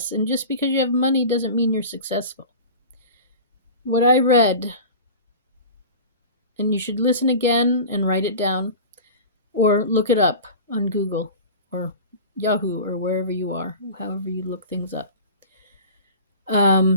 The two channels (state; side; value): inverted; both; correlation -0.35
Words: And just because you have money doesn't mean you're successful. What I read, and you should listen again and write it down, or look it up on Google or Yahoo or wherever you are, however you look things up.